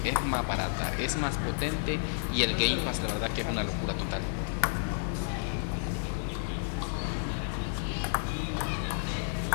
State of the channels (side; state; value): right; silent; 57 dB below the other